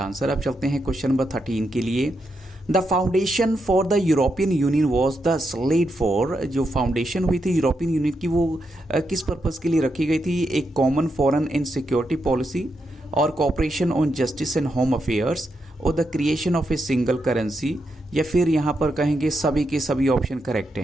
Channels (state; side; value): normal; both; correlation 0.83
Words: अब चलते हैं क्वेश्चन नंबर 13 के लिए। The foundation for the European Union was the sled for. जो फाउंडेशन हुई थी यूरोपियन यूनियन की वो किस पर्पज़ के लिए रखी गई थी। एक common foreign and security policy, और cooperation on justice and home affairs, और the creation of a single currency, या फिर यहाँ पर कहेंगे सभी के सभी ऑप्शन करेक्ट